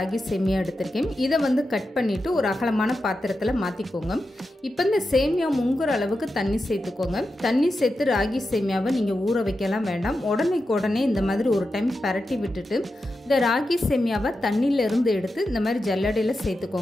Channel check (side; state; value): both; normal; correlation 0.90